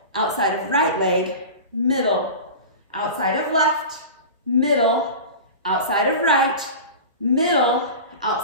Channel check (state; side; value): inverted; both; correlation -0.31